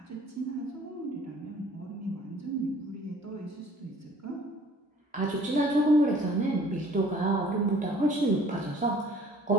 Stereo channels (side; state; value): both; normal; correlation 0.54